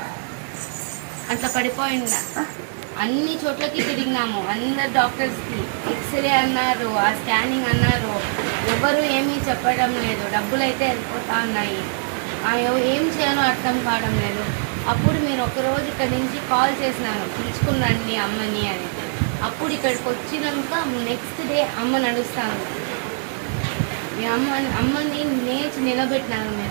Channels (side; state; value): left; silent; digital silence